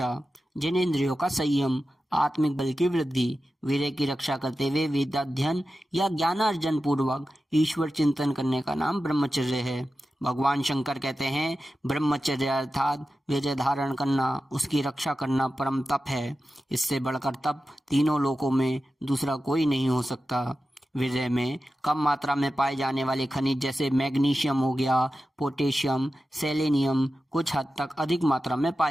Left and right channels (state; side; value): normal; both; correlation 0.93